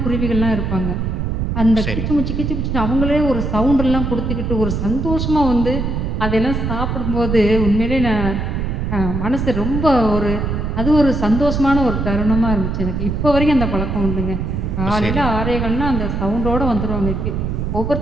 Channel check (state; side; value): noise; right; rumble, 2 dB below the sound